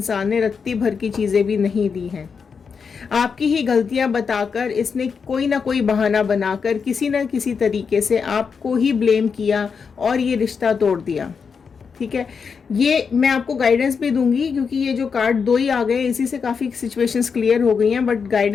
ने रत्ती भर की चीजें भी नहीं दी हैं। आपकी ही गलतियां बताकर इसने कोई ना कोई बहाना बनाकर किसी न किसी तरीके से आपको ही ब्लेम किया और ये रिश्ता तोड़ दिया। ठीक है, ये मैं आपको गाइडेंस भी दूंगी क्योंकि ये जो कार्ड दो ही आ गए, इसी से काफ़ी सिचुएशंस क्लियर हो गई हैं, बट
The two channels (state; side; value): quieter; right; 5.9 dB